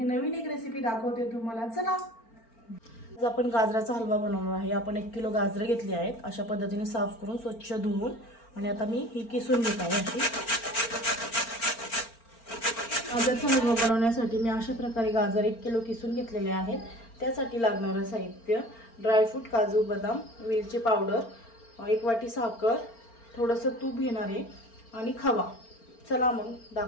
नवीन एक रेसिपी दाखवते तुम्हाला। चला आज आपण गाजराचा हलवा बनवणार आहे। आपण 1 किलो गाजरे घेतली आहेत, अशा पद्धतीने साफ करून स्वच्छ धुवून, आणि आता मी ही किसून घेत आहे। अशी गाजराचा हलवा बनवण्यासाठी मी अशा प्रकारे गाजर 1 किलो किसून घेतलेले आहेत। त्यासाठी लागणारे साहित्य: ड्रायफ्रूट, काजू, बदाम, वेलची पावडर, 1 वाटी साखर, थोडंसं तूप घेणार आहे आणि खवा। चला मग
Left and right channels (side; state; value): right; late; 4.4 ms